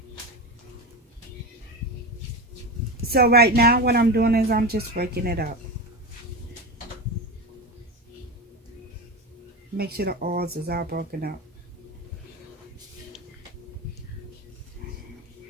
So right now what I'm doing is I'm just breaking it up. Make sure the oils is all broken up.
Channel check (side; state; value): both; normal; correlation 0.22